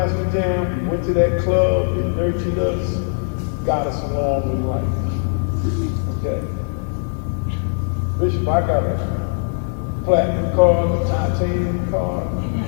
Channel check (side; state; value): right; silent; 65 dB below the other